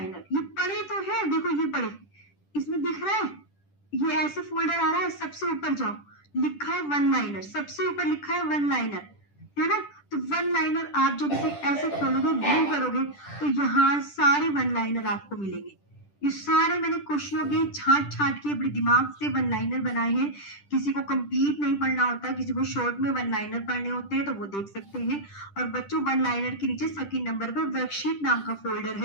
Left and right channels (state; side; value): late; right; 10 ms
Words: ये पढ़े तो है, देखो ये पढ़े, इसमें दिख रहा है, ये ऐसे फोल्डर आ रहा है, सबसे ऊपर जाओ, लिखा है वन लाइनर, सबसे ऊपर लिखा है वन लाइनर, है ना? तो वन लाइनर आप जब इसे ऐसे खोलोगे, व्यू करोगे, तो यहाँ सारे वन लाइनर आपको मिलेंगे। ये सारे मैंने क्वेश्चनों के छांट छांट के अपने दिमाग से वन लाइनर बनाए हैं। किसी को कंप्लीट नहीं पढ़ना होता, किसी को शॉर्ट में वन लाइनर पढ़ने होते हैं, तो वो देख सकते हैं। और बच्चों, वन लाइनर के नीचे सेकंड नंबर पर वर्कशीट नाम का फोल्डर